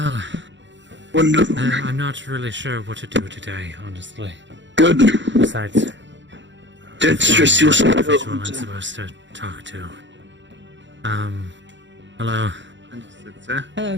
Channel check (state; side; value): late; left; 0.54 ms